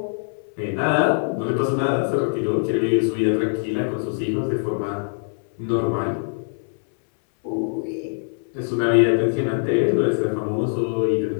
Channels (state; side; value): silent; right; 64 dB below the other